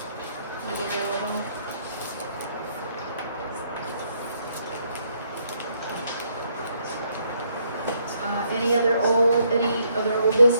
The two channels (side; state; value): both; inverted; correlation -0.71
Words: I'm available. Any other old